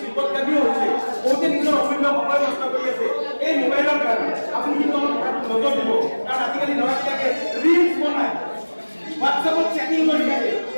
বিপদগামীও হৈছে। বহুতে নিজৰ অমূল্য সময় নষ্ট কৰি আছে এই মোবাইলৰ কাৰণে। আপুনি কিন্তু অলপ নজৰ দিব, কাৰণ আজিকালি ল'ৰা-ছোৱালীয়ে ৰিলছ বনায়, হোৱাটছআপত চেটিং কৰি থাকে,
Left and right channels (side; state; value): both; inverted; correlation -1.00